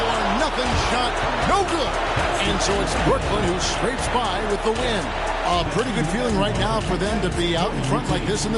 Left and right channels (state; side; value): identical; both; correlation 1.00